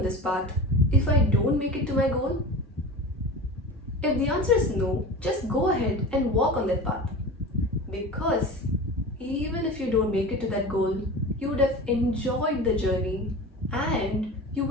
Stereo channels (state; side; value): normal; both; correlation 0.32